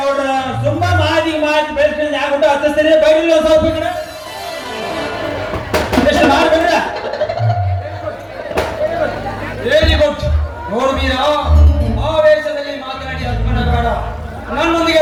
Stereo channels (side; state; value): both; identical; correlation 1.00